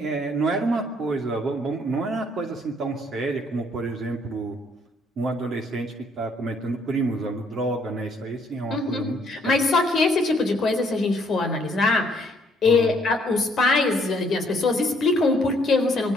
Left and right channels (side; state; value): both; normal; correlation 0.66